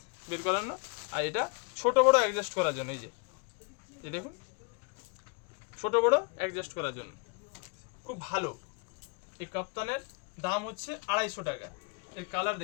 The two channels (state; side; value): quieter; right; 32.0 dB